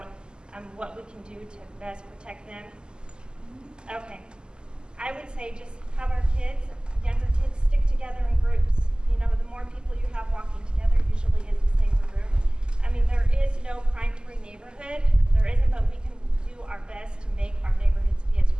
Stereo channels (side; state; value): left; late; 0.047 ms